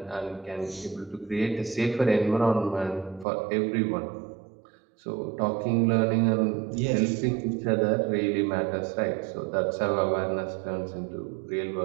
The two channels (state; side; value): drops out; left; at 3.2 s